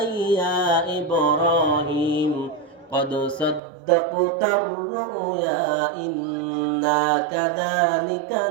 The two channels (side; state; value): left; drops out; at 3.6 s